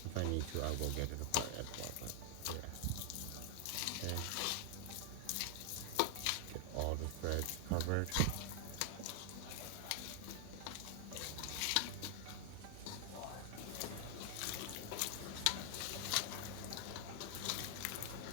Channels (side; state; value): both; different; correlation 0.00